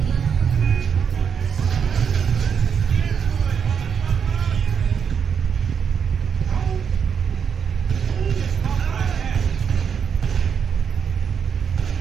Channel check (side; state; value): left; quieter; 7.0 dB